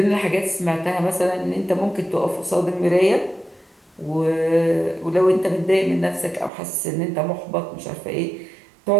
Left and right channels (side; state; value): left; drops out; at 6.5 s